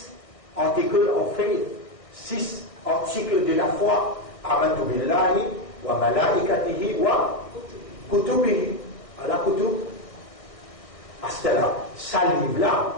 articles of faith, 6 articles de la foi. Amantu billahi wa malaikatihi wa kutubihi. Allah kutub. À ce là, ça livre-là,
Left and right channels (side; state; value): right; late; 1.6 ms